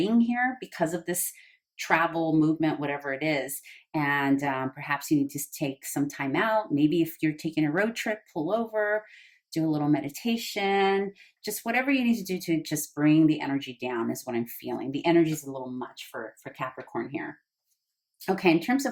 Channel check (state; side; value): identical; both; correlation 1.00